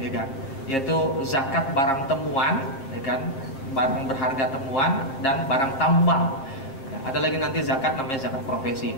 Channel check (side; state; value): right; late; 7.4 ms